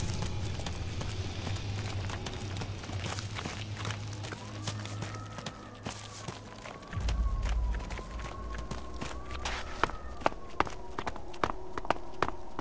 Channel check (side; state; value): both; identical; correlation 1.00